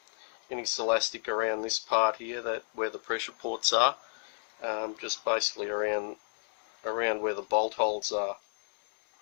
Celastic around this part here, where the pressure ports are, just basically around where the bolt holes are.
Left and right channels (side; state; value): right; silent; 56 dB below the other